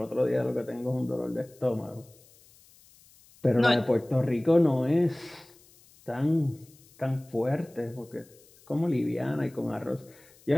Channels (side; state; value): left; noise; hiss, 27 dB below the sound